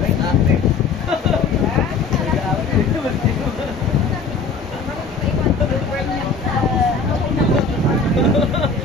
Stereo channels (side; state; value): right; quieter; 4.6 dB